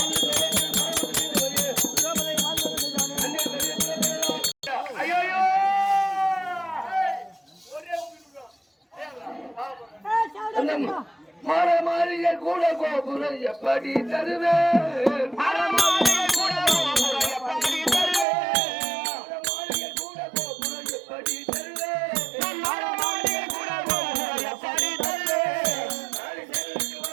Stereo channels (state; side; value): drops out; left; at 18.2 s